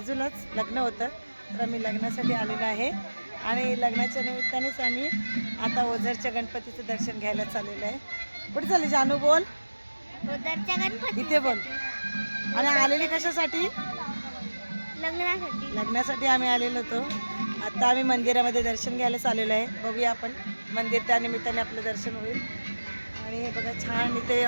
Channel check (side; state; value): both; inverted; correlation -1.00